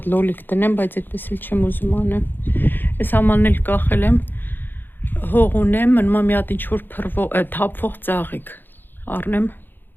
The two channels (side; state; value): right; late; 0.094 ms